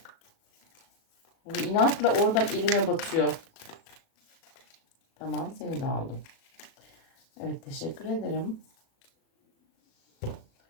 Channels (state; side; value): late; right; 37 ms